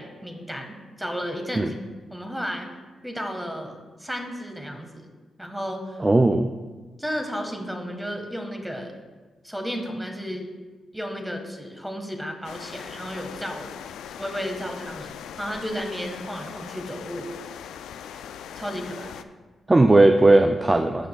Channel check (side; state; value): both; normal; correlation 0.95